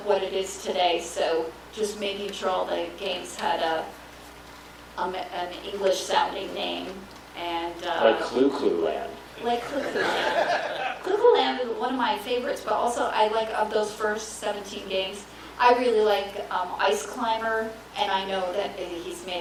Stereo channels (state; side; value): identical; both; correlation 1.00